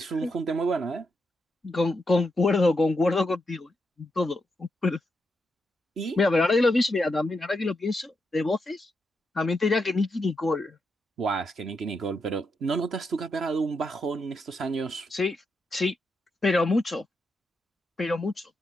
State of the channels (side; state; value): both; normal; correlation 0.84